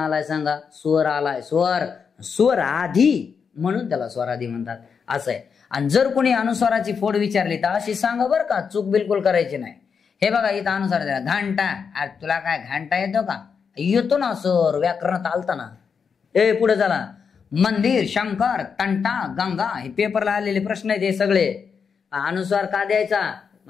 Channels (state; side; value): quieter; right; 6.2 dB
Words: सांगा, स्वर आलाय. स्वर आधी म्हणून त्याला स्वराधी म्हणतात, असं आहे. आणि जर कोणी अनुस्वाराची फोड विचारली तर अशी सांगा बरं का, चूक बिलकुल करायची नाही. हे बघा इथं अनुस्वार द्या, घंटा. अरे तुला काय घंटा येतो का, येतो ना सर, व्याकरणात आलता ना. पुढे झाला मंदिर, शंकर, तंटा, गंगा. हे पेपरला आलेले प्रश्न आहेत हे सगळे. अनुस्वार का द्यायचा,